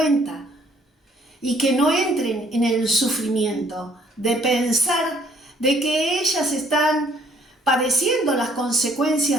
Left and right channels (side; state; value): both; normal; correlation 0.63